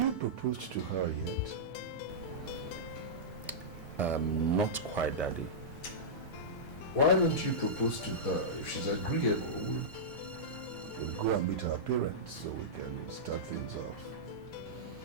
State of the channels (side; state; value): right; late; 2.2 ms